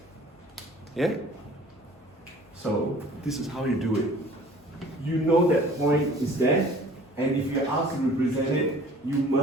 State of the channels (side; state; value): both; normal; correlation 0.49